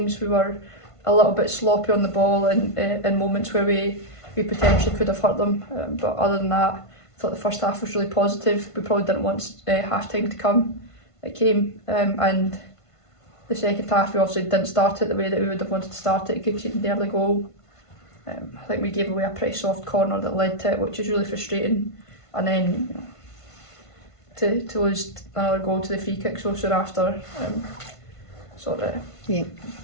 we were a little bit sloppy on the ball and in moments where we potentially could have hurt them. But other than that, I thought the first half was really positive. We probably didn't want half-time to come. It came, and the second half we obviously didn't start it the way that we would have wanted to start it, conceding the early goal. I think we gave away a pretty soft corner that led to it, which is really frustrating. And then to lose another goal to the free kick so soon after sort of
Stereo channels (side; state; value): right; late; 1.5 ms